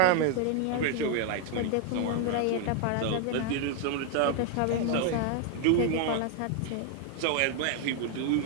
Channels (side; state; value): both; different; correlation 0.00